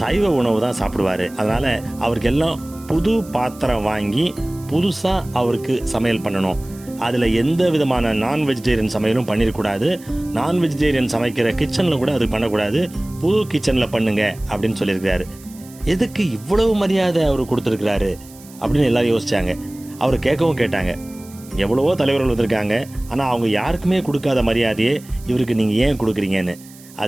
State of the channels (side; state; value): right; noise; hiss, 22 dB below the sound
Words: உணவு தான் சாப்பிடுவார், அதனால் அவருக்கு எல்லாம் புது பாத்திரம் வாங்கி புதுசாக அவருக்கு சமையல் பண்ணணும். அதில் எந்த விதமான நான் வெஜிடேரியன் சமையலும் பண்ணிடக்கூடாது. நான் வெஜிடேரியன் சமைக்கிற கிச்சனில் கூட அது பண்ணக்கூடாது, புது கிச்சனில் பண்ணுங்க அப்படின்னு சொல்லியிருக்கிறாரு. எதுக்கு இவ்வளவு மரியாதை அவர் கொடுத்துருக்கிறாரு அப்படின்னு எல்லாரும் யோசிச்சாங்க. அவர் கேட்கவும் கேட்டாங்க, எவ்வளவோ தலைவர்கள் வந்திருக்காங்க, ஆனால் அவங்க யாருக்குமே கொடுக்காத மரியாதையே இவருக்கு நீங்கள் ஏன் கொடுக்குறீங்கன்னு.